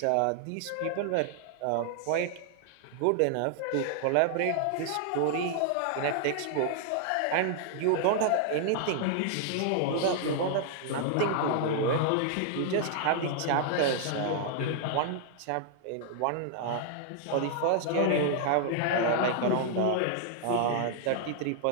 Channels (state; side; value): different; both; correlation -0.01